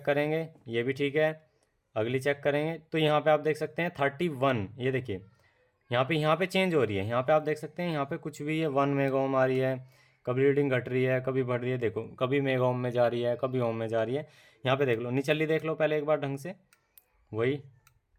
करेंगे, ये भी ठीक है। अगली चेक करेंगे तो यहाँ पे आप देख सकते हैं 31, ये देखिए यहाँ पे चेंज हो रही है। यहाँ पे आप देख सकते हैं यहाँ पे कुछ भी है 1 मेगा ओम आ रही है, कभी रीडिंग घट रही है, कभी बढ़ रही है। देखो कभी मेगा ओम में जा रही है, कभी ओम में जा रही है। यहाँ पे देख लो, निचली देख लो पहले एक बार ढंग से, वही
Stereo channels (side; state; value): both; identical; correlation 1.00